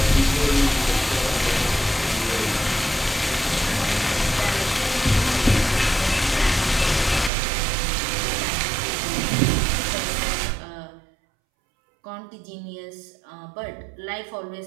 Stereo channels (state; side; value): drops out; left; at 7.3 s